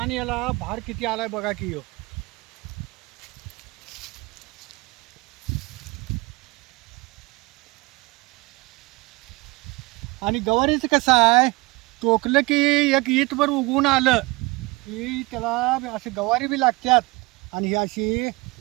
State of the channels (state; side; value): quieter; left; 24.1 dB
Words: याला भार किती आलाय बघा की. आणि गवारीचं कसं आहे, टोकलं की एक ईतभर उगवून आलं की त्याला असं गवारी बी लागतात. आणि ही अशी